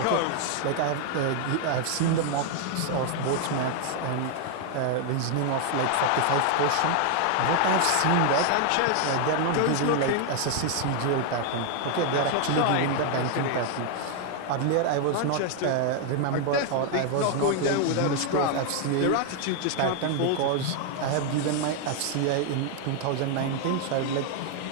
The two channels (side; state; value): both; different; correlation 0.00